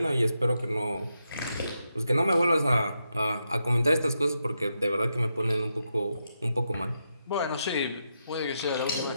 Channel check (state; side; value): inverted; both; correlation -0.85